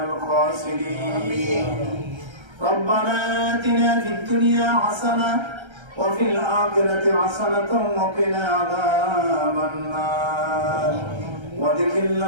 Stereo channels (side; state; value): left; late; 1.3 ms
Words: ربنا آتنا في الدنيا حسنة وفي الآخرة حسنة وقنا عذاب النار